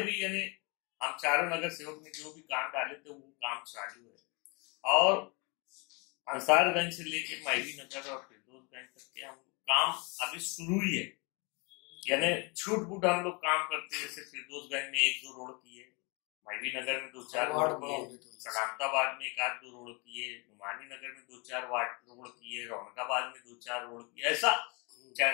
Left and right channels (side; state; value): right; quieter; 30.4 dB